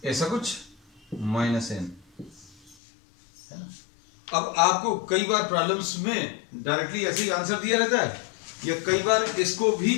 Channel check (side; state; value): right; drops out; at 2.8 s